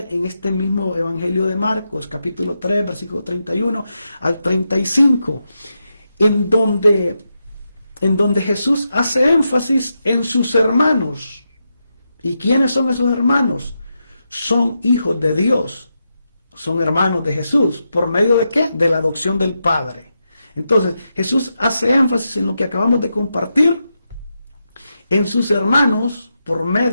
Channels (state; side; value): inverted; both; correlation -0.86